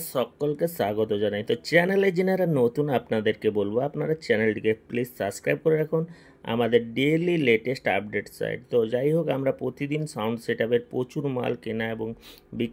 সকলকে স্বাগত জানাই। তো চ্যানেলে যারা নতুন আপনাদেরকে বলবো আপনারা চ্যানেলটিকে প্লিজ সাবস্ক্রাইব করে রাখুন আমাদের ডেইলি লেটেস্ট আপডেট সাইট। তো যাই হোক, আমরা প্রতিদিন সাউন্ড সেটআপের প্রচুর মাল কেনা এবং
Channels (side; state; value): both; identical; correlation 1.00